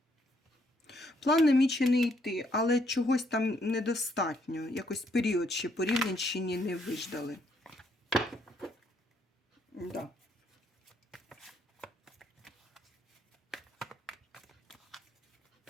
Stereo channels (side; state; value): both; normal; correlation 0.71